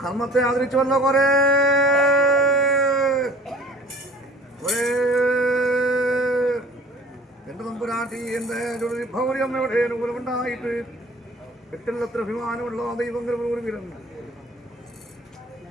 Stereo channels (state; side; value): normal; both; correlation 0.47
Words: കർമ്മത്തെ ആദരിച്ചുവല്ലോ കൊറേ എന്റെ തമ്പുരാട്ടി എന്റെ ഭൗര്യമ്മയുടെ അനുകൂലമുണ്ടായിട്ട് എട്ടില്ലത്ര അഭിമാനമുള്ള ദൈവങ്ങൾ വീരൻ